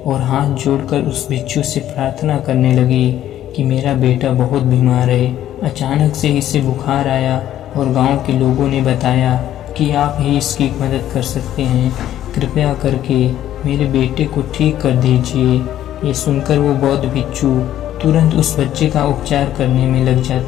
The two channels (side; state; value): right; quieter; 12.1 dB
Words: और हाथ जोड़कर उस भिक्षु से प्रार्थना करने लगी कि मेरा बेटा बहुत बीमार है, अचानक से इसे बुखार आया और गांव के लोगों ने बताया कि आप ही इसकी मदद कर सकते हैं, कृपया करके मेरे बेटे को ठीक कर दीजिए। ये सुनकर वो बौद्ध भिक्षु तुरंत उस बच्चे का उपचार करने में लग